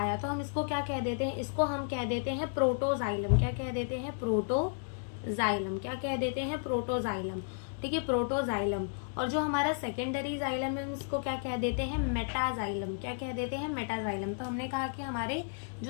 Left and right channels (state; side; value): silent; right; digital silence